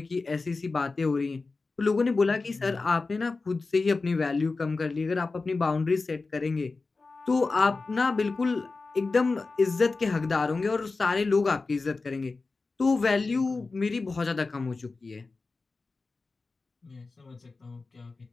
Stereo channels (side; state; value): right; quieter; 3.9 dB